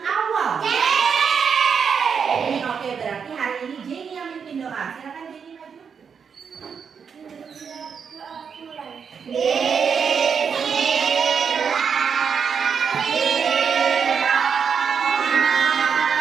Oke, berarti hari ini Jenny yang mimpin doa. Silakan Jenny maju.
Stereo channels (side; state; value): left; quieter; 6.5 dB